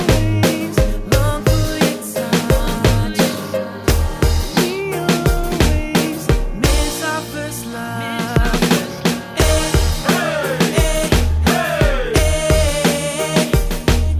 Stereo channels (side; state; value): both; identical; correlation 1.00